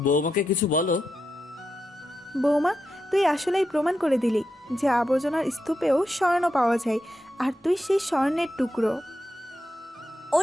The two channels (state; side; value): normal; both; correlation 0.86